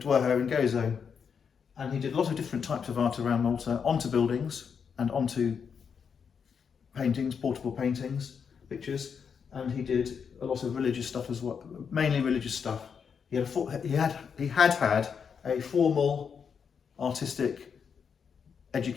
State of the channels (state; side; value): quieter; right; 6.6 dB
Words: and Gozo, and he did a lot of different types of art around Malta, onto buildings and onto paintings, portable paintings, pictures, and he did a lot of religious stuff as well, mainly religious stuff. He had had a formal artistic